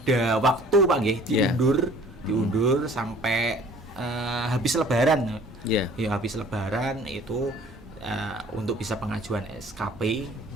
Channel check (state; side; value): normal; both; correlation 0.52